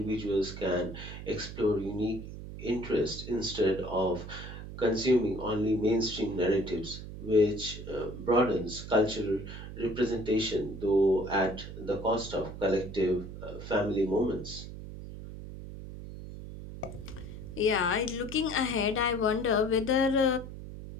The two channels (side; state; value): right; noise; hum, 11 dB below the sound